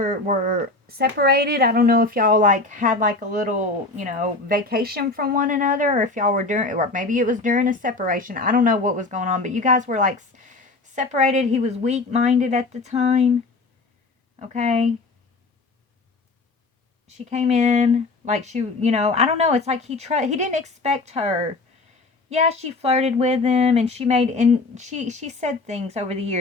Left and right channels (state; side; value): quieter; right; 3.4 dB